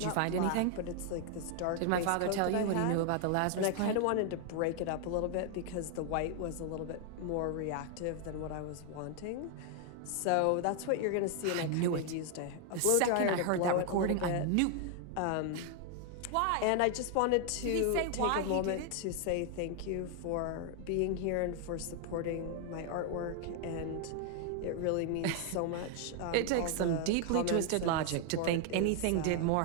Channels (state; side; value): different; both; correlation 0.00